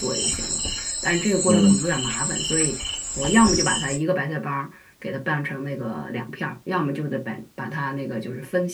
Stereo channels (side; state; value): both; identical; correlation 1.00